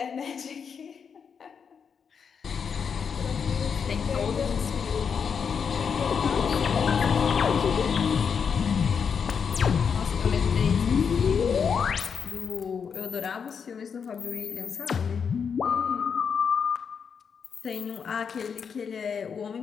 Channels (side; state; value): right; quieter; 6.5 dB